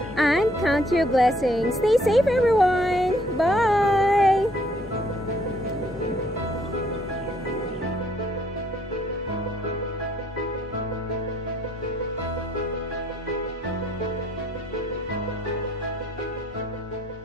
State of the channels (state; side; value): normal; both; correlation 0.65